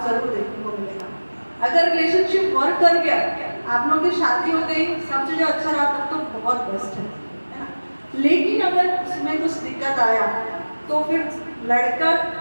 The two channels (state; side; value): inverted; both; correlation -1.00